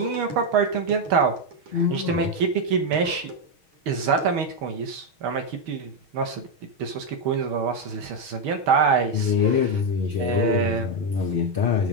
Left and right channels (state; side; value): late; left; 6.4 ms